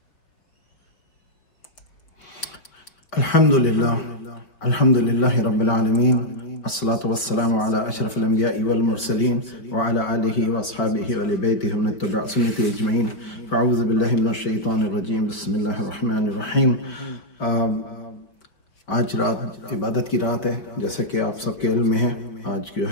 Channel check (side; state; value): right; late; 5.0 ms